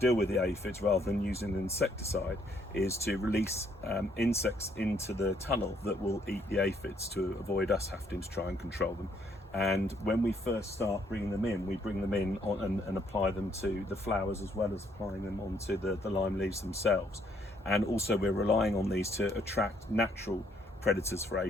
with the aphids, rather than using an insecticide, is to release insects into the tunnel that will eat the aphids to avoid us having to try and control them. And when we first start bringing them in, we bring them in and apply them to the flowers, as well as applying them onto the lime leaves themselves. And also we're relying on these to attract natural predators for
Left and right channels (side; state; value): both; normal; correlation 0.68